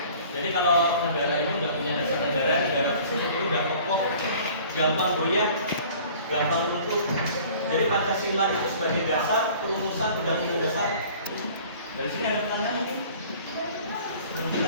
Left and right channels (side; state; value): both; inverted; correlation -0.49